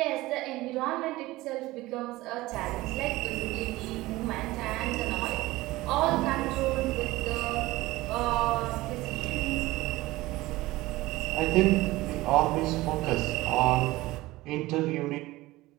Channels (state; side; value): quieter; left; 18.9 dB